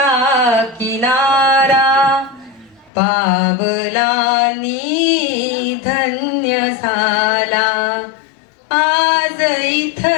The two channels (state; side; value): drops out; right; at 2.9 s